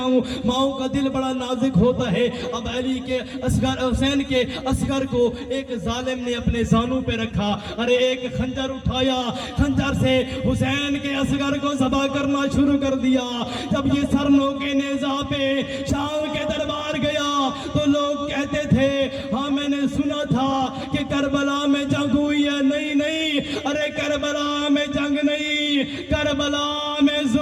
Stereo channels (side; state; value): both; identical; correlation 1.00